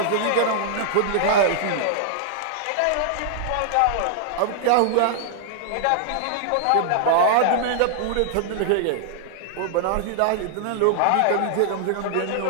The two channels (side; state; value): both; different; correlation -0.01